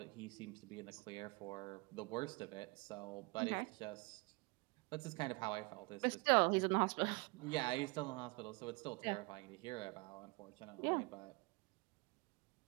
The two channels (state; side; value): quieter; left; 27.5 dB